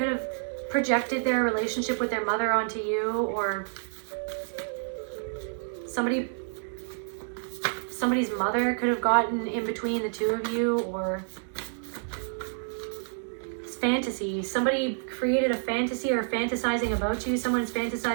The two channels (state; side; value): silent; left; 59 dB below the other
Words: have projected their relationship with their mother onto you, or somebody's mother could have gotten in between the two of you, or it's fantasy. Somebody created a fantasy or fantasizing about you. Someone's